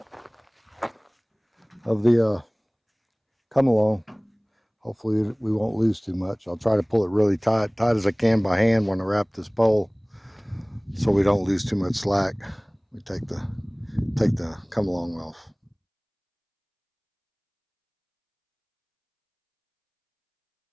come along. Hopefully we won't lose too much. I'll try to pull it really tight as I can by hand when I wrap this pole, so we don't lose too much slack. We take the come along off.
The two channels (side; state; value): both; identical; correlation 1.00